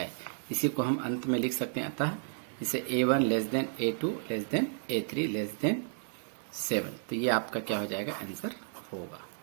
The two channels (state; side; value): silent; left; digital silence